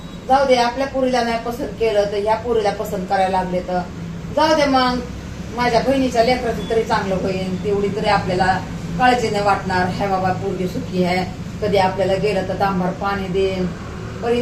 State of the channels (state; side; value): identical; both; correlation 1.00